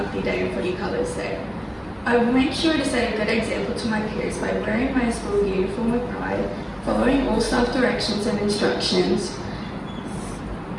Day and Footy Colours Day. I will make sure to set a good example to my peers by wearing my school uniform with pride, following all staff directions and instructions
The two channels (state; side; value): identical; both; correlation 1.00